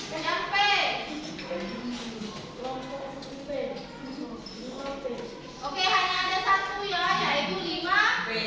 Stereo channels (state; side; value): identical; both; correlation 1.00